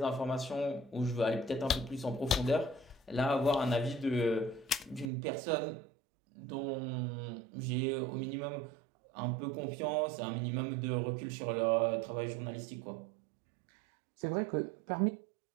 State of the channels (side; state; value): left; drops out; at 5.1 s